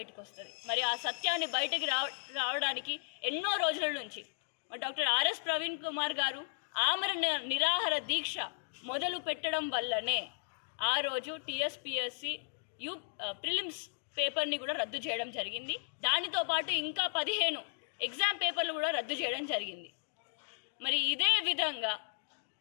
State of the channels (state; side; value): silent; right; digital silence